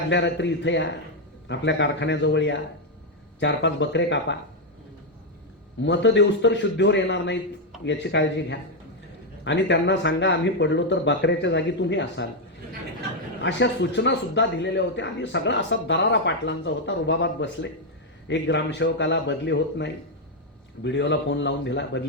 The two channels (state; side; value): normal; both; correlation 0.02